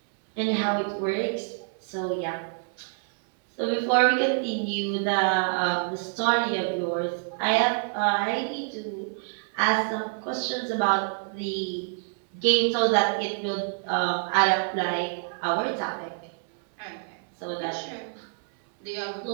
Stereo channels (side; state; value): left; silent; 60 dB below the other